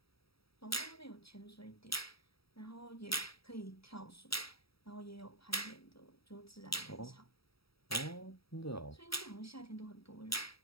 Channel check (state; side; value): late; right; 0.76 ms